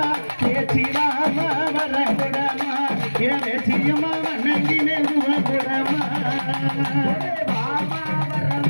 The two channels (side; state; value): both; inverted; correlation -1.00